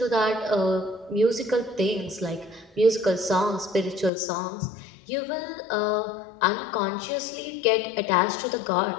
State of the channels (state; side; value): drops out; right; at 4.1 s